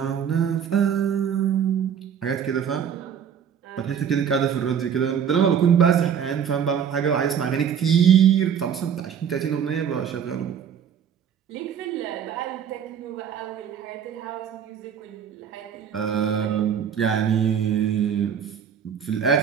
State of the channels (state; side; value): quieter; left; 8.1 dB